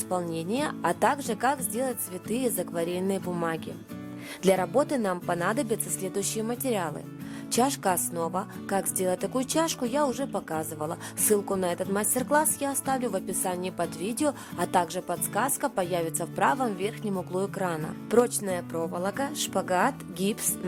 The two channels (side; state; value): both; identical; correlation 1.00